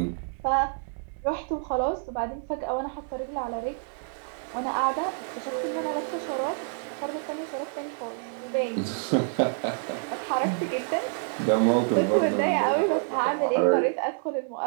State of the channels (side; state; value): left; silent; digital silence